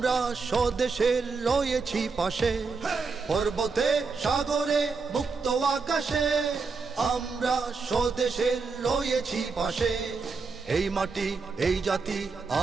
স্বদেশের রয়েছি পাশে। পর্বতে সাগরে মুক্ত আকাশে, আমরা স্বদেশের রয়েছি পাশে। এই মাটি এই জাতি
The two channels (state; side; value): quieter; left; 4.6 dB